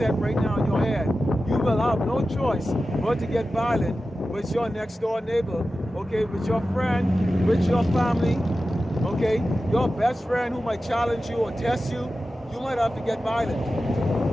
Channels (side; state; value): both; normal; correlation 0.93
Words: right now in your head. You will have no choice but to get violent with your next door neighbor, okay, with your friend, with your family. Okay, your best friend who might challenge you or test you, you might have to get violent.